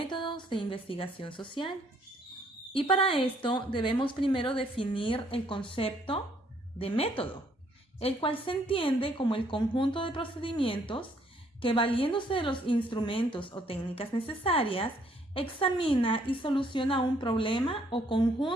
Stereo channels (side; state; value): both; normal; correlation 0.66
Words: de Investigación Social. Y para esto debemos primero definir el concepto de método, el cual se entiende como el conjunto de procedimientos que, valiéndose de los instrumentos o técnicas necesarias, examina y soluciona un problema o